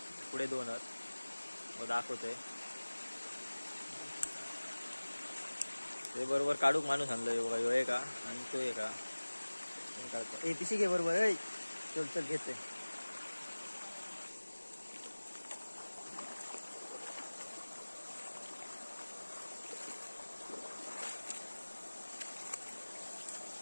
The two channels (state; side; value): inverted; both; correlation -1.00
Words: पुढे दोनच व दाखवतोय। ते बरोबर काढूक माणूस आणलोय बघा, ह्यो आहे का आणि तो आहे का काढतो। ए पिशी घे बरोबर, ए चल चल घेते।